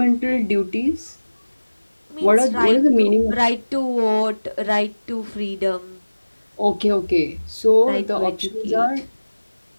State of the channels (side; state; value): both; inverted; correlation -1.00